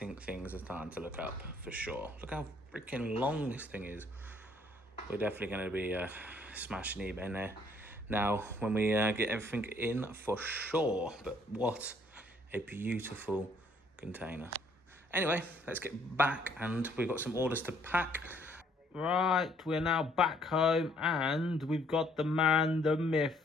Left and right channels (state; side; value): normal; both; correlation 0.64